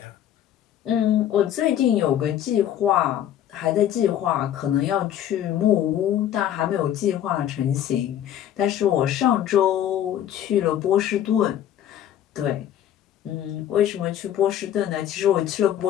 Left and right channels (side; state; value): right; quieter; 10.9 dB